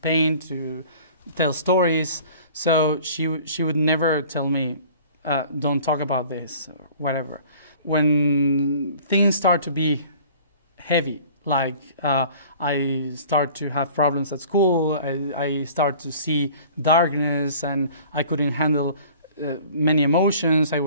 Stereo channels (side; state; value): both; inverted; correlation -0.48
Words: to tell stories. So she would never tell me, don't talk about this or whatever. When things start to be heavy, like I start to have problems at school, I start to see darkness, and I couldn't handle many emotions. I